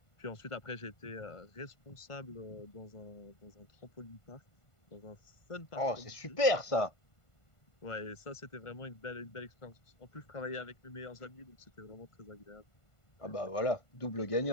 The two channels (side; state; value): right; late; 1.5 ms